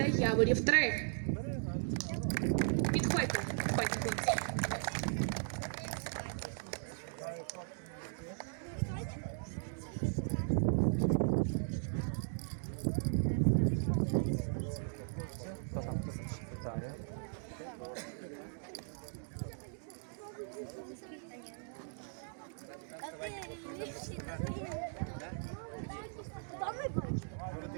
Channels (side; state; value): left; silent; digital silence